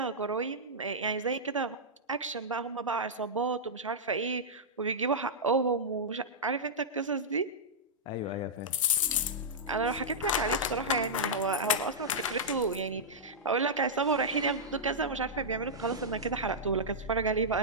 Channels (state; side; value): normal; both; correlation -0.10